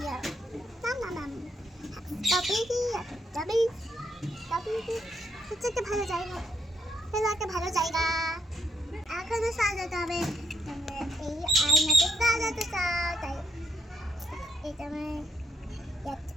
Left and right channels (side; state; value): both; normal; correlation 0.75